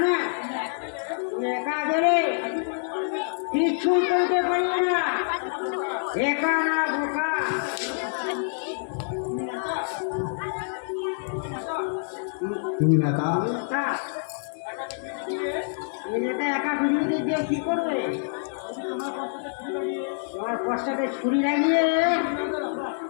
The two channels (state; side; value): silent; right; digital silence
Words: না? তুমি একা গেলে কিছু করতে পারবে না, একা না বোকা। তুমি নেতা, তুমি নেতা একা পৃথিবীতে গিয়ে কি করবে? তোমার কষ্টকে ছুরি লাগিয়ে